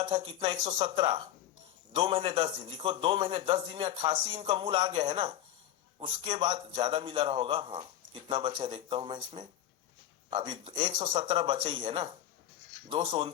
था कितना, 117, 2 महीने 10 दिन, लिखो 2 महीने 10 दिन में 88 इनका मूल आ गया है ना। उसके बाद ज्यादा मिला रहा होगा, हाँ कितना बचा देखता हूं मैं इसमें, अभी 117 बचे ही है ना,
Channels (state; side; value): quieter; right; 11.9 dB